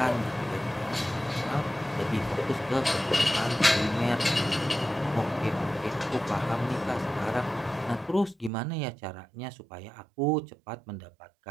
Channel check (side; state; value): left; drops out; at 8.5 s